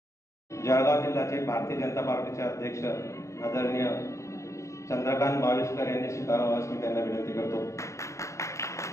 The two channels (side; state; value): right; late; 0.15 ms